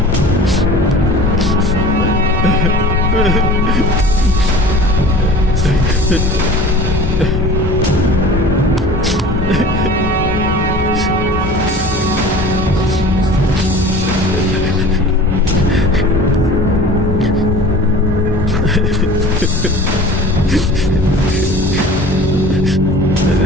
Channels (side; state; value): both; normal; correlation 0.41